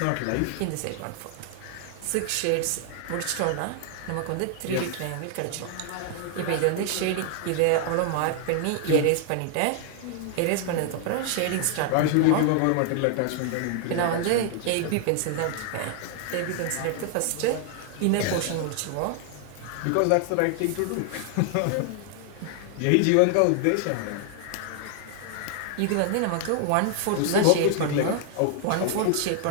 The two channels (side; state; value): both; different; correlation 0.00